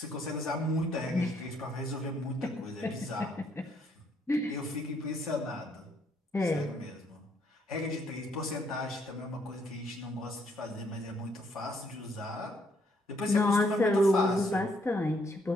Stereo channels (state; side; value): normal; both; correlation 0.70